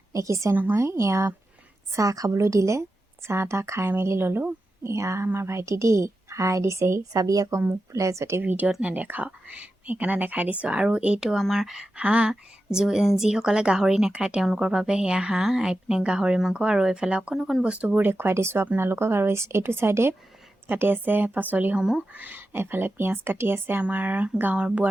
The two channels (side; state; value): both; normal; correlation 0.91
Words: দেখিছে নহয়, এয়া চাহ খাবলৈ দিলে, চাহ তাহ খাই মেলি ল'লোঁ। এয়া আমাৰ ভাইটি দেই হাই দিছেহি, চাবি আকৌ মোক বোলে যদি ভিডিঅ'ত নেদেখাওঁ, সেইকাৰণে দেখাই দিছোঁ। আৰু এইটো আমাৰ হাঁহ, যিসকলে গাহৰি নাখায় তেওঁলোকৰ বাবে সেয়া হাঁহ, এইপিনে গাহৰি মাংস, আৰু এইফালে অকণ অকণ বস্তুবোৰ দেখুৱাই দিছোঁ আপোনালোকক। আৰু এইটো চাইডে কাটি আছে পাচলিসমূহ, এইফালে পিঁয়াজ কাটি আছে আমাৰ গাঁৱৰ